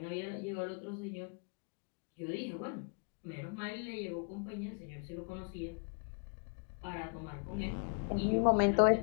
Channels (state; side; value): quieter; right; 39.7 dB